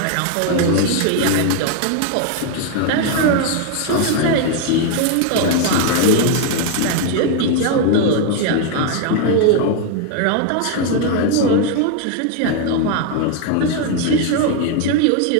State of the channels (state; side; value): different; both; correlation 0.01